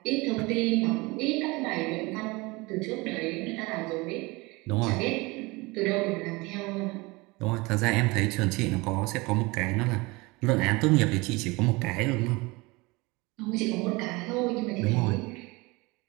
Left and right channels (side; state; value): left; quieter; 24.2 dB